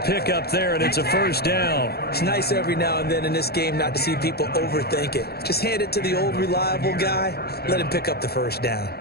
up there, and it's a first down. It's nice every now and then in this game not to see people overthink it. Just hand it to the old reliable guy. Let him pick up the first down.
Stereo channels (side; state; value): right; late; 0.46 ms